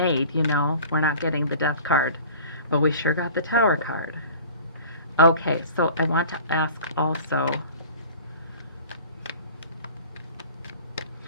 We're not getting the Death card, but we sure got the Tower card. Okay, so I want to ask also,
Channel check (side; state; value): both; inverted; correlation -0.43